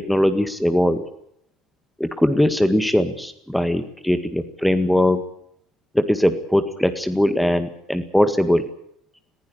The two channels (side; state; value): both; normal; correlation 0.94